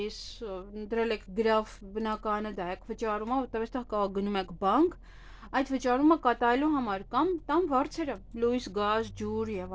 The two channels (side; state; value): both; identical; correlation 1.00